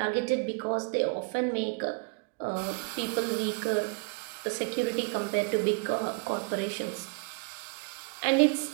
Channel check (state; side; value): quieter; left; 33.6 dB